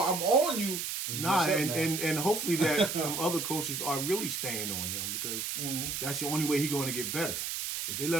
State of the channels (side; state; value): right; noise; hiss, 3 dB below the sound